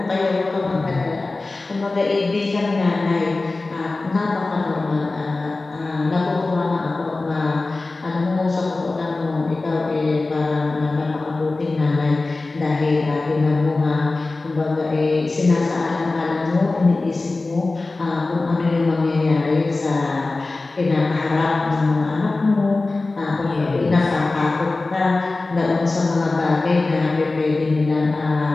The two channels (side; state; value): right; quieter; 3.3 dB